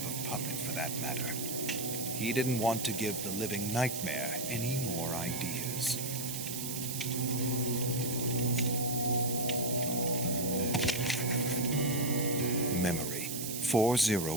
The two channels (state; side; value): noise; right; hiss, 4 dB below the sound